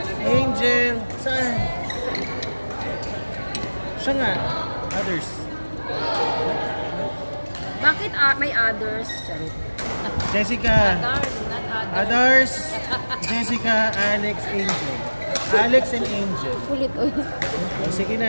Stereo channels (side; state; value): both; inverted; correlation -1.00